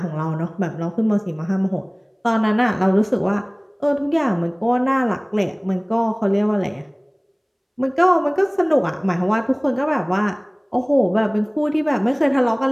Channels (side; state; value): both; identical; correlation 1.00